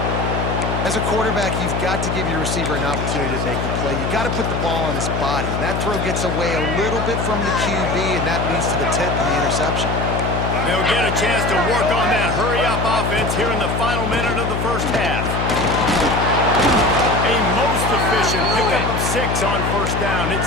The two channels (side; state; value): left; noise; hum, 1 dB below the sound